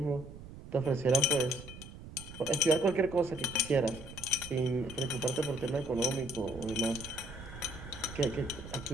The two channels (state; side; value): noise; right; rumble, 14 dB below the sound